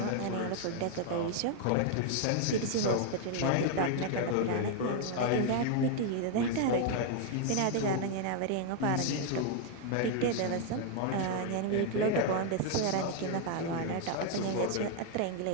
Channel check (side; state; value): both; different; correlation 0.00